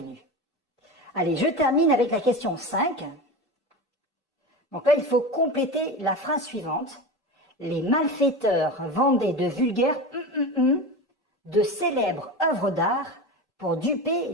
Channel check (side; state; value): both; normal; correlation 0.26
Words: Allez, je termine avec la question 5. Donc là, il faut compléter la phrase suivante. Les malfaiteurs vendaient de vulgaires de célèbres œuvres d'art pour duper